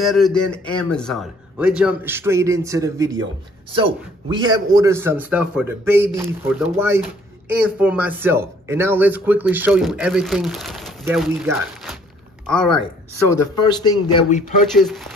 than Amazon. Let's jump straight into the video. So, we have ordered some stuff for the baby, for the wife, and for myself. And now let's quickly show you everything that we got. Alright, so the first thing that we purchased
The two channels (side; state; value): both; normal; correlation 0.60